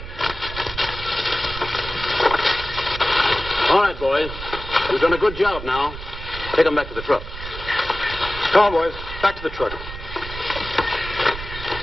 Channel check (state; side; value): noise; right; rumble, 11 dB below the sound